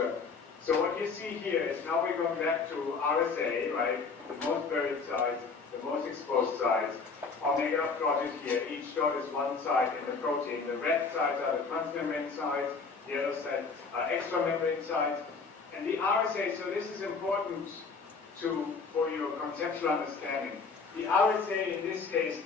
So what you see here is now we're going back to RSA, right? The most buried sites, the most exposed sites. Omega plotted here. Each dot is one site in the protein. The red sites are the transmembrane sites. The yellow sites are extramembrane sites. And the RSA, so this is important for your conceptual understanding. The RSA in this case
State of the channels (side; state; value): right; quieter; 4.7 dB